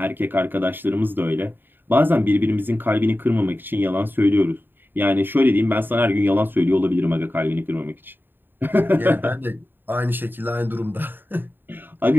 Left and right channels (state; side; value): late; left; 0.095 ms